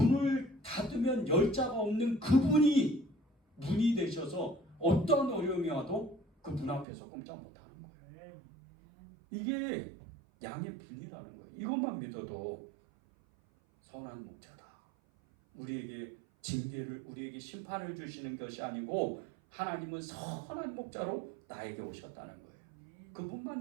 닫으면 열자가 없는 그분이 문이 되셔서 어떤 어려움이 와도 그 문 앞에서 꼼짝 못하는 거예요. 이게 양의 분이라는 거예요. 이것만 믿어도 선한 목자다. 우리에게 징계를, 우리에게 심판을 주시는 것이 아니고 하나님은 선한 목자로 나에게 오셨다는 거예요. 그분만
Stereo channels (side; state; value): left; drops out; at 6.9 s